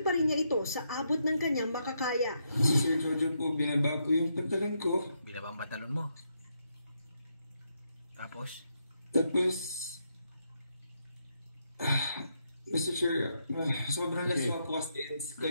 pa rin niya ito sa abot ng kanyang makakaya. Si Sir Jojo po, binaba ko yung pantalon ko. Binaba ang pantalon mo? Tapos, Mr. Chair, sobrang laswa po kasi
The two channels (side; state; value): both; inverted; correlation -0.80